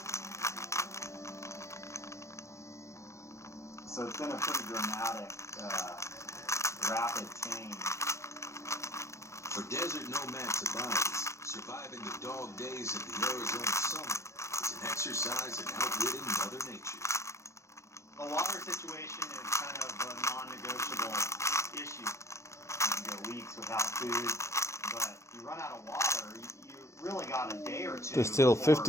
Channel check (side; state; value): right; late; 0.14 ms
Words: So it's been a pretty dramatic, rapid change. For desert nomad Tobias, surviving the dog days of the Arizona summer is an exercise in outwitting Mother Nature. The water situation is kind of a non-negotiable issue. You go weeks without food, but you run out of water, you really got a day or two. There's still